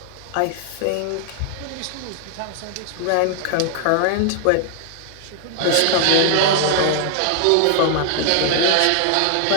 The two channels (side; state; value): both; different; correlation 0.00